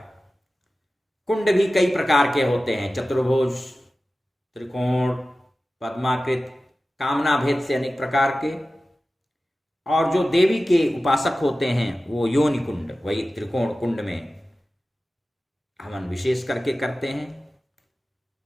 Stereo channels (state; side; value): normal; both; correlation 0.95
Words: कुंड भी कई प्रकार के होते हैं, चतुर्भुज, त्रिकोण, पद्माकृत, कामना भेद से अनेक प्रकार के। और जो देवी के उपासक होते हैं वो योनि कुंड, वही त्रिकोण कुंड में हवन विशेष करके करते हैं।